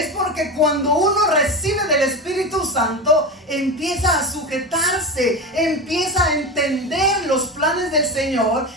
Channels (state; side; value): normal; both; correlation 0.22